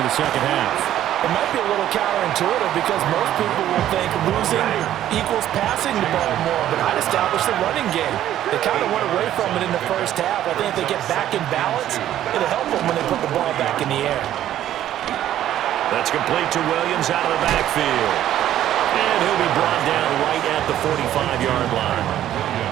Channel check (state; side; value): quieter; left; 12.1 dB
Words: the second half? It might be a little counterintuitive because most people will think losing equals passing the ball more, but I'd establish the running game. They kind of went away from it in the first half. I think if they get back in balance, it'll help them when they put the ball back in the air. That's complete to Williams out of the backfield. And he'll be brought down right at the 45-yard line.